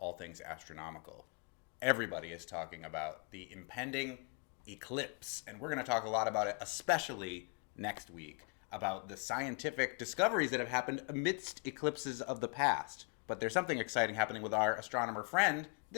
things astronomical. Everybody is talking about the impending eclipse, and we're going to talk a lot about it, especially next week, about the scientific discoveries that have happened amidst eclipses of the past. But there's something exciting happening with our astronomer friend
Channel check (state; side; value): quieter; right; 36.2 dB